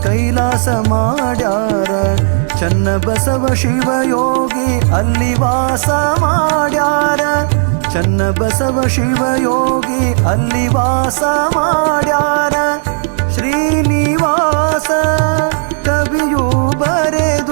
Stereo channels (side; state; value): left; silent; digital silence